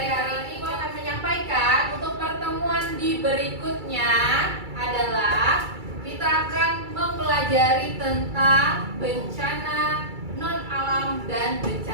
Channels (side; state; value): left; late; 2.3 ms